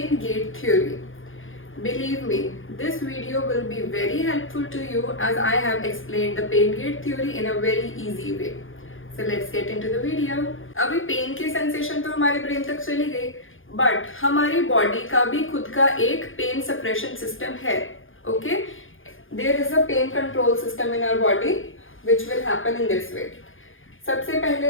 gate theory. Believe me, this video will be very helpful to you as I have explained the pain gate theory in a very easy way. So let's get into the video. अभी pen की sensation तो हमारे brain तक चली गई, but हमारी body का भी खुद का एक पेन सप्रेशन सिस्टम है. Okay, there is a pain control system in our body which will happen in this way. सबसे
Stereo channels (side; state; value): right; late; 0.58 ms